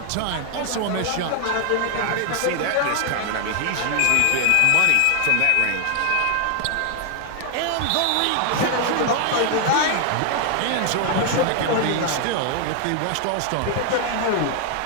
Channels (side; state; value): both; different; correlation 0.00